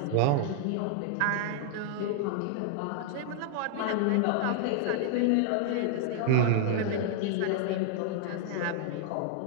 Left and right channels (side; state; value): both; different; correlation -0.01